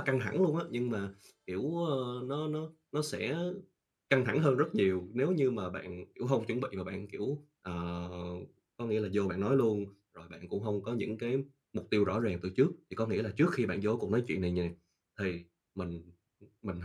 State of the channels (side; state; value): both; identical; correlation 1.00